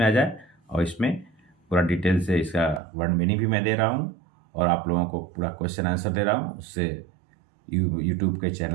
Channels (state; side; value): drops out; left; at 2.8 s